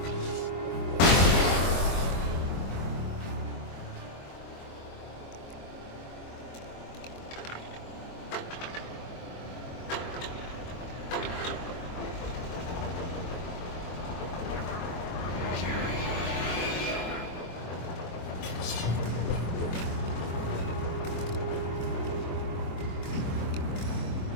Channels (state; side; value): late; right; 23 ms